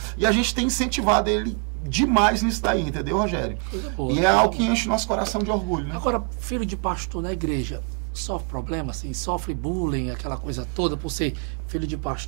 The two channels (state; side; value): quieter; left; 35.9 dB